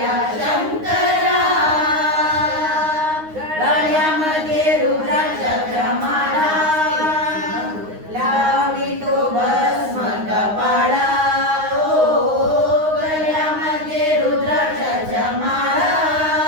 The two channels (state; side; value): late; left; 9.6 ms